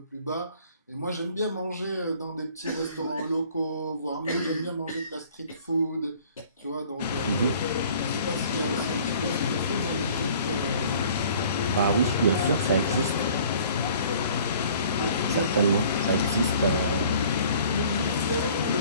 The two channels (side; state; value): both; inverted; correlation -0.52